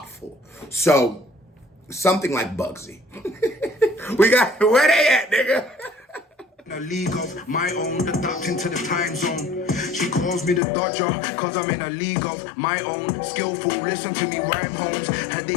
So, something like Bugzy. We got, where they at, nigga? In a league of my own, adapting to the time zone. She calls me the Dodger, cause I'm in a league of my own. Skillful, listen to me, rhyme homes. Are they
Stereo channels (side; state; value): right; drops out; at 10.6 s